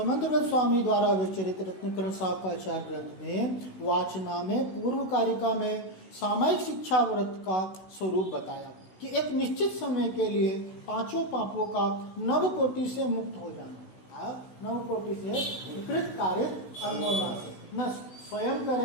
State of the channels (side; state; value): right; late; 16 ms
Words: स्वामी द्वारा विचरित रत्नकरण साकाचार ग्रंथ में वाचना में पूर्व कारिका में सामायिक शिक्षा व्रत का स्वरूप बताया कि एक निश्चित समय के लिए 5 पापों का नवकोटि से मुक्त हो जाना। नवकोटि से विकृत कार्य अनुमोदन से न स्वयं